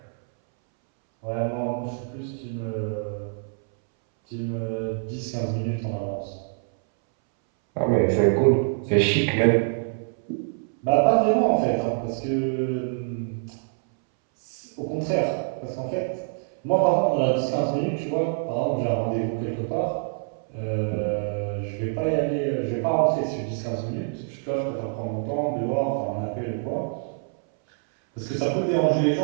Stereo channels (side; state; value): left; silent; 61 dB below the other